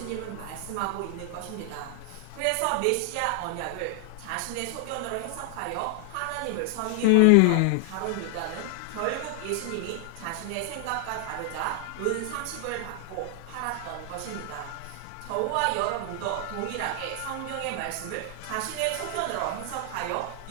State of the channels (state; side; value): different; both; correlation 0.00